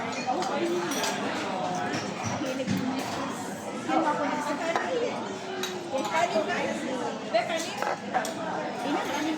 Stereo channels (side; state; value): both; identical; correlation 1.00